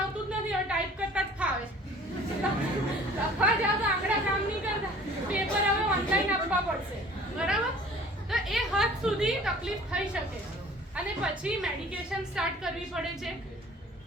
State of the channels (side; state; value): both; normal; correlation 0.49